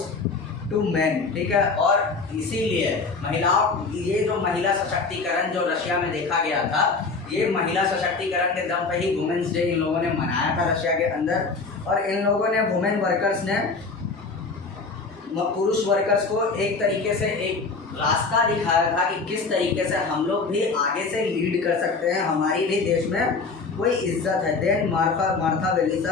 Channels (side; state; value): right; quieter; 4.2 dB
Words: to man. ठीक है, और इसीलिए महिलाओं, ये जो महिला सशक्तिकरण जो रशिया में देखा गया था, ये महिला सशक्तिकरण के दम पे ही वुमेन्स डे इन लोगों ने मनाया था रशिया के अंदर। और इन लोगों ने, वुमेन वर्कर्स ने पुरुष वर्कर्स को एक तरीके से एक रास्ता दिखाया था कि किस तरीके से हम लोग भी आगे से लीड कर सकते हैं, हमारी भी देश में कोई इज्जत है। Then Martha